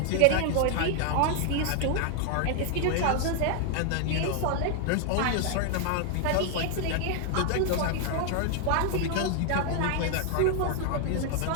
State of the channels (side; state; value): both; different; correlation 0.00